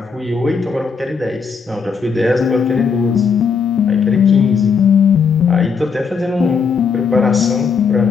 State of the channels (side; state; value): right; quieter; 5.7 dB